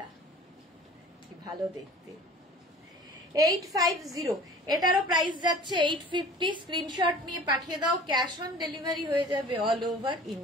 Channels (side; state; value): both; normal; correlation 0.44